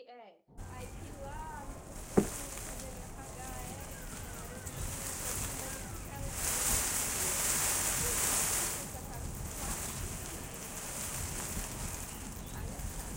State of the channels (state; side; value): identical; both; correlation 1.00